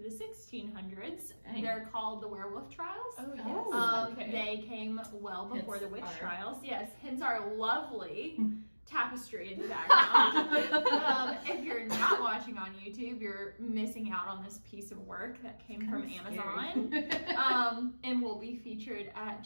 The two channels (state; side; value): inverted; both; correlation -1.00